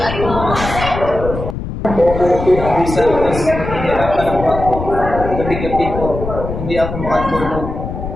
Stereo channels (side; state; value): left; noise; rumble, 7 dB below the sound